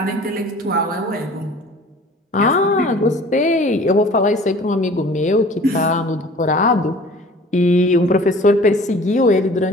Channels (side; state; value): both; normal; correlation 0.47